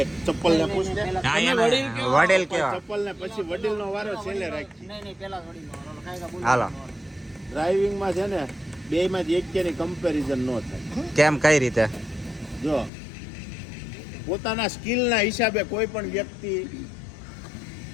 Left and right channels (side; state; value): right; drops out; at 12.9 s